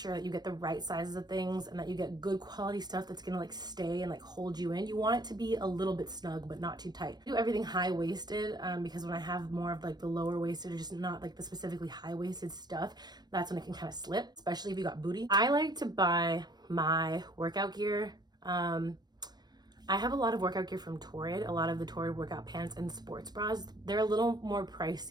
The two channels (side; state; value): left; late; 0.20 ms